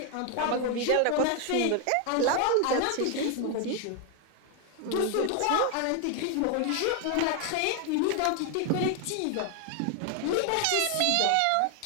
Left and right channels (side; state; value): both; different; correlation 0.00